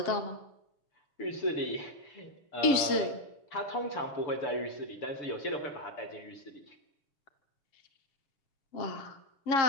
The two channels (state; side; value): late; right; 7.4 ms